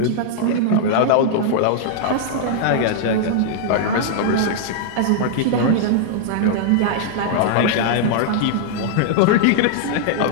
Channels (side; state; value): both; different; correlation -0.01